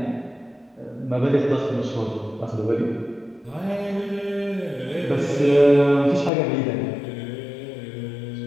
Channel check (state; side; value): drops out; right; at 6.3 s